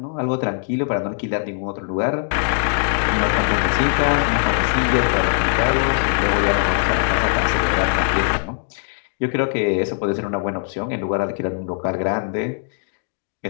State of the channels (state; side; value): silent; right; digital silence